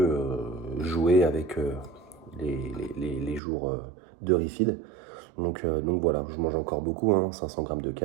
jouer avec les jours de refeed. Donc voilà, je mange encore beaucoup, hein, 500 grammes de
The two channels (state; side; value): drops out; left; at 3.4 s